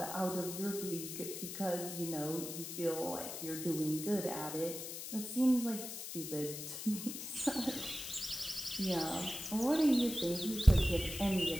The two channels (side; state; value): left; noise; hiss, 7 dB below the sound